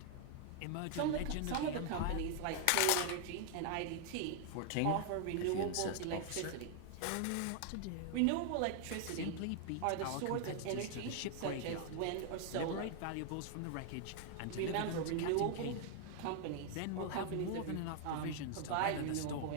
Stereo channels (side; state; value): both; different; correlation 0.00